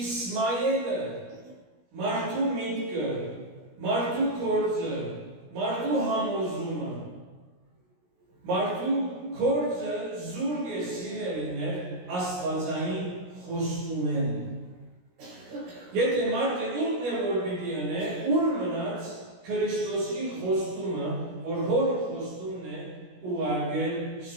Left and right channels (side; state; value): left; late; 17 ms